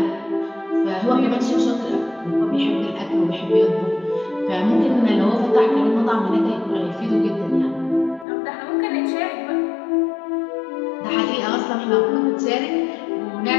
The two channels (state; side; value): drops out; right; at 8.2 s